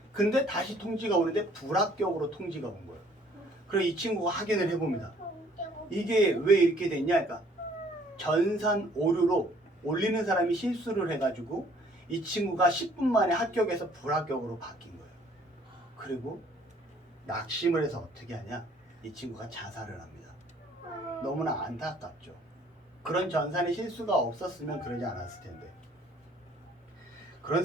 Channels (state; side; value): normal; both; correlation 0.60